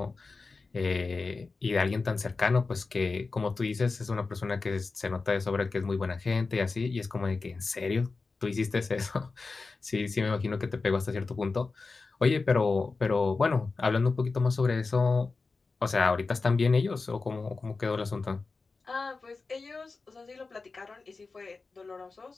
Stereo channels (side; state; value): right; quieter; 4.1 dB